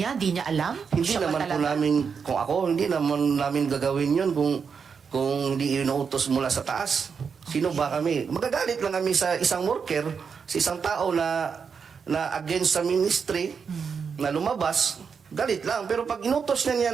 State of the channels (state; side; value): quieter; left; 6.1 dB